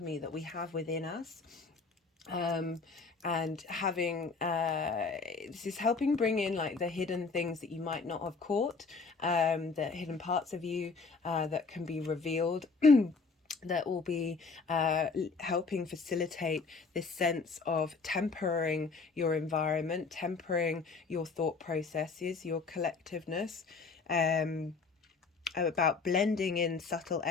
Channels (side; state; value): right; quieter; 4.5 dB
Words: that we have within us. And having this is helping bring in like the hidden things that you might not have caught, the hidden parts of you that can be revealed. That will be helping facilitate this sense of tempering your environment, tempering your thought processes, your collectiveness, about blending in subtle